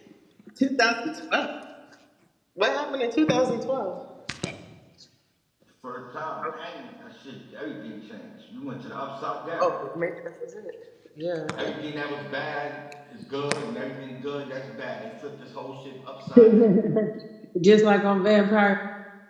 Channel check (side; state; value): both; identical; correlation 1.00